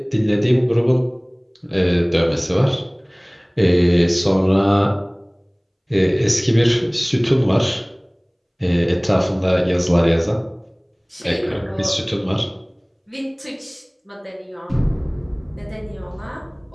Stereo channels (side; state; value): both; identical; correlation 1.00